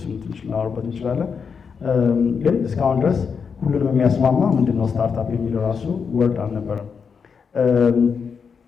ትንሽ እናወራበት እንችላለን። ግን እስካሁን ድረስ ሁሉንም የሚያስማማ ምንድነው ስታርታፕ የሚለው ራሱ ወርድ አልነበረም።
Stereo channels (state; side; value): quieter; right; 6.1 dB